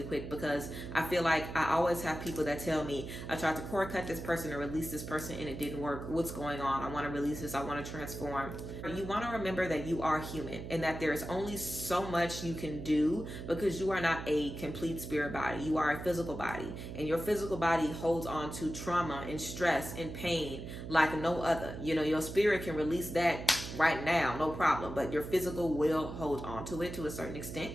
quick, because I feel like I always have people that tell me, I tried to cord cut this person or release this person and it didn't work. What's going on? I want to release this. I want to transform. You want to remember that you are human and that there's only so much you can do, because you are not a complete spirit body. You are a physical body, and your physical body holds on to trauma and stress and pain like no other. Your spirit can release that right now, no problem, but your physical will hold on to it to a certain extent.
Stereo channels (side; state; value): right; noise; hum, 8 dB below the sound